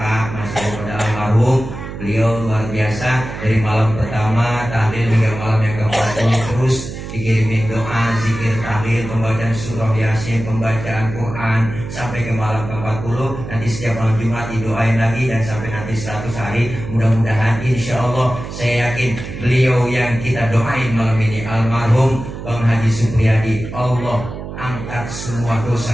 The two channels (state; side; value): noise; right; hum, 9 dB below the sound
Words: masih pada almarhum. Beliau luar biasa dari malam pertama tahlil hingga malam yang ke-40 terus dikirimin doa, zikir, tahlil, pembacaan surah Yasin, pembacaan Quran sampai ke malam ke-40. Nanti setiap malam Jumat didoain lagi dan sampai nanti 100 hari. Mudah-mudahan insya Allah saya yakin beliau yang kita doain malam ini almarhum Bang Haji Supriyadi, Allah angkat semua